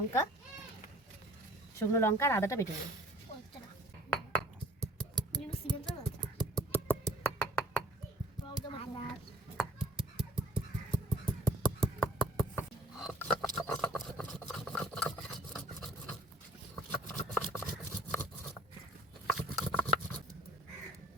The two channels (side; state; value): both; normal; correlation 0.52